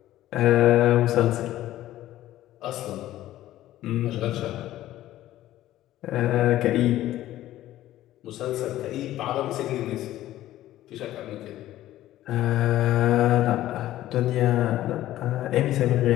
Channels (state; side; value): quieter; right; 14.2 dB